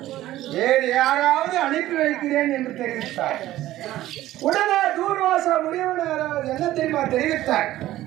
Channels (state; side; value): quieter; left; 14.8 dB